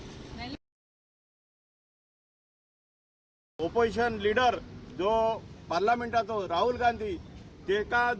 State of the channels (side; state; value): both; identical; correlation 1.00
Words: ओपोजिशन लीडर जो पार्लमेंटाचो राहुल गांधी तेका